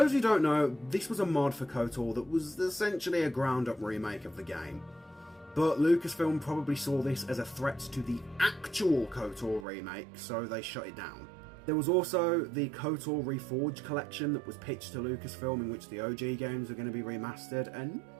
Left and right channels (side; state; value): left; drops out; at 9.7 s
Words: who don't know, this was a mod for KOTOR that was essentially a ground-up remake of the game. But Lucasfilm probably saw this as a threat to the actual KOTOR remake, so they shut it down. There was also the KOTOR Reforged collection that was pitched to Lucasfilm, in which the OG games were going to be remastered, and